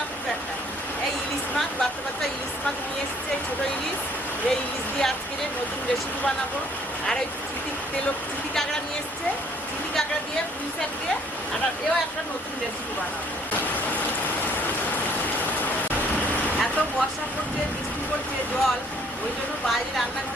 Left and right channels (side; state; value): both; normal; correlation 0.60